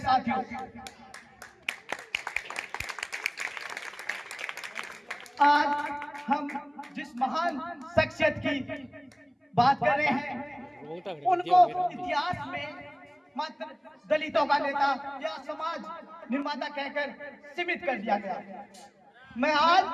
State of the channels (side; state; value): both; identical; correlation 1.00